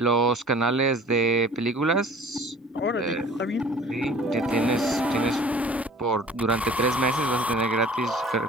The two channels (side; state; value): both; normal; correlation 0.48